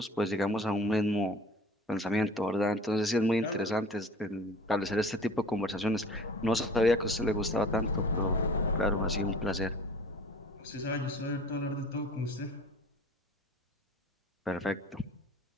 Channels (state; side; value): normal; both; correlation 0.45